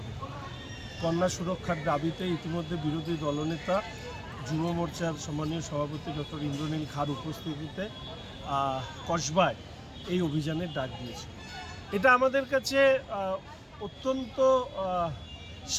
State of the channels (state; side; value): identical; both; correlation 1.00